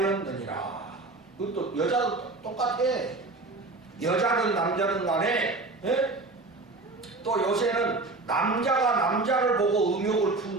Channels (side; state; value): left; quieter; 3.3 dB